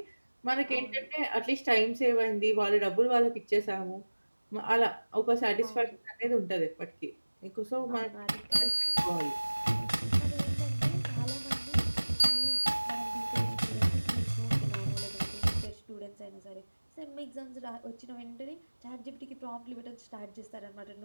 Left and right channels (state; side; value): inverted; both; correlation -1.00